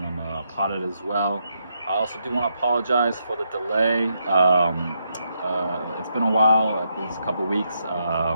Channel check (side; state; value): both; inverted; correlation -0.79